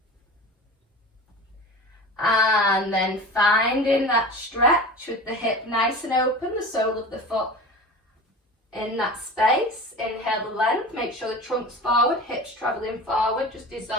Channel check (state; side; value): normal; both; correlation 0.34